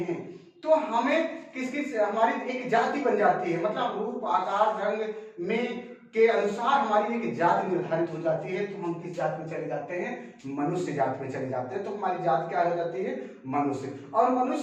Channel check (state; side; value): identical; both; correlation 1.00